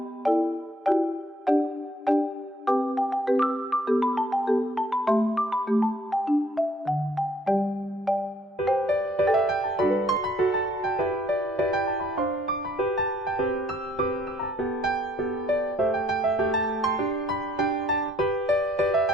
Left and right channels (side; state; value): both; normal; correlation 0.63